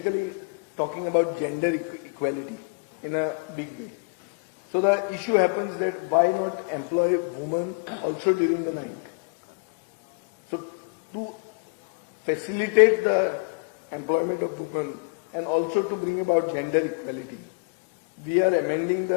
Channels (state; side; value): quieter; right; 34.8 dB